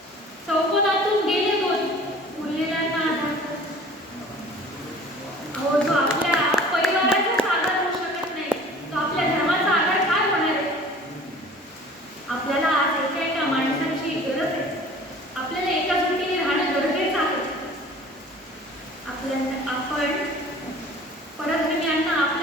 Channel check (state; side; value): normal; both; correlation 0.46